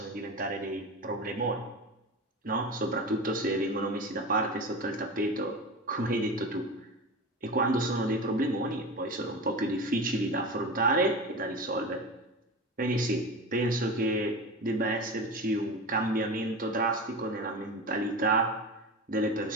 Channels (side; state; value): both; normal; correlation 0.27